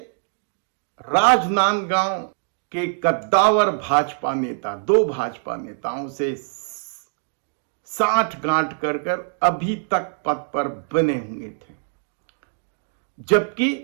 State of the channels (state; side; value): silent; left; 63 dB below the other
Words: राजनांदगांव के कद्दावर भाजपा नेता, 2 भाजपा नेताओं से साठ गांठ कर अभी तक पद पर बने हुए थे, जबकि